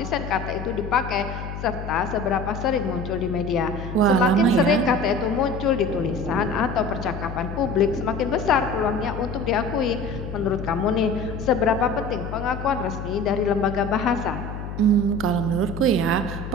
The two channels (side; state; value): left; noise; hum, 8 dB below the sound